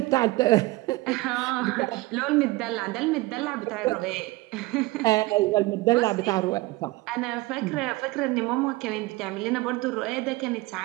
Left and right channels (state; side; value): quieter; left; 20.8 dB